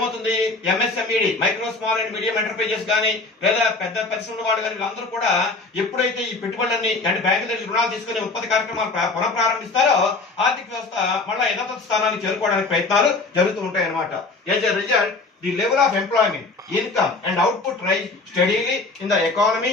MSMED, micro small and medium enterprises కానీ లేదా పెద్ద పరిశ్రమల వాళ్ళు కానీ వీళ్ళందరూ కూడా ఎప్పుడైతే ఈ పెట్టుబడులన్నీ అంటే బ్యాంకుల దగ్గర రుణాలు తీసుకుని ఉత్పత్తి కార్యక్రమాలు పునఃప్రారంభిస్తారో ఆర్థిక వ్యవస్థ మళ్ళీ యథాతథ స్థానానికి చేరుకోవడానికి ప్రయత్నాలు జరుగుతూ ఉంటాయి అన్నమాట. As a result the level of employment, income and output rise steadily in the economy.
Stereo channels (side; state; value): right; quieter; 3.6 dB